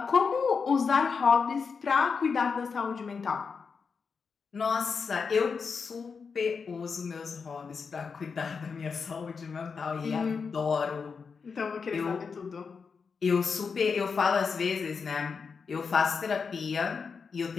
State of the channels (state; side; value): quieter; right; 5.4 dB